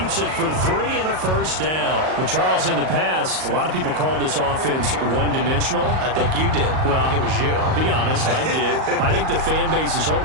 it for 3 and a first down. Well, Charles, in the past, a lot of people called this offense one-dimensional. I think you did. Well, I think it was you. I'll be honest, I did. I think the fan base is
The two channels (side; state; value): left; late; 38 ms